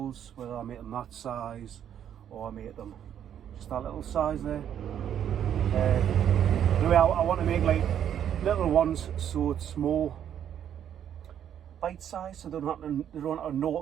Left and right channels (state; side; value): quieter; left; 9.6 dB